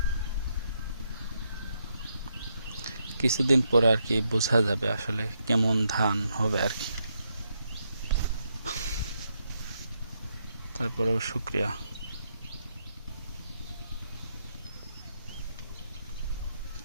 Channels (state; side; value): inverted; both; correlation -0.79